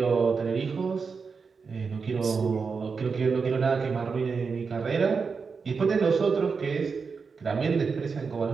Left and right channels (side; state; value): left; quieter; 5.2 dB